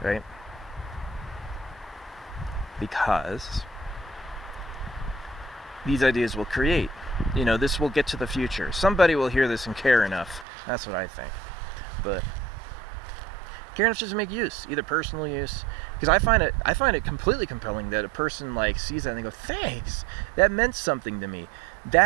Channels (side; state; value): left; drops out; at 10.5 s